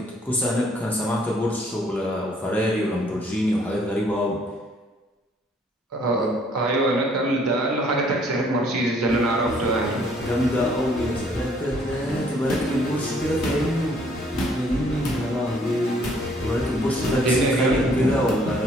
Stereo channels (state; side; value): normal; both; correlation 0.62